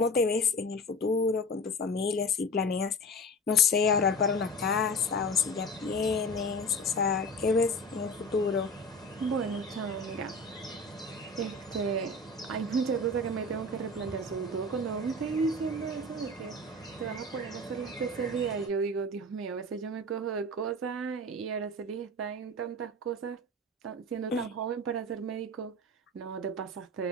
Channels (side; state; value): both; normal; correlation 0.34